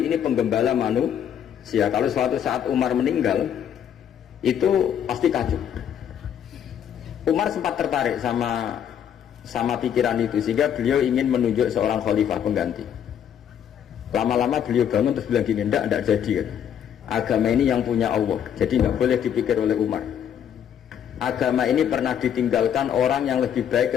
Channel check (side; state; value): right; quieter; 9.1 dB